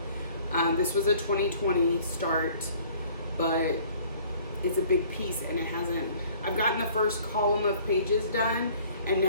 This was a 2020 start, but it's a big piece and it hasn't, I've gotten the first column of pages done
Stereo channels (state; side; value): inverted; both; correlation -0.54